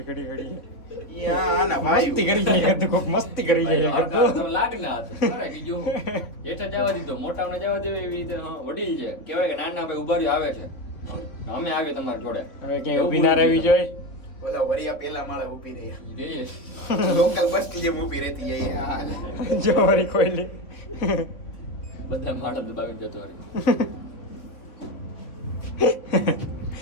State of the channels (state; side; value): late; right; 3.7 ms